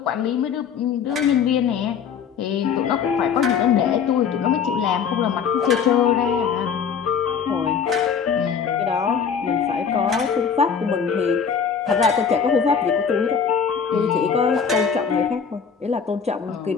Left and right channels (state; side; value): quieter; right; 6.8 dB